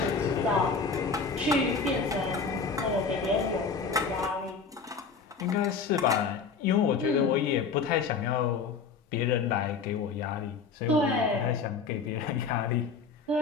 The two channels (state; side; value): quieter; right; 5.1 dB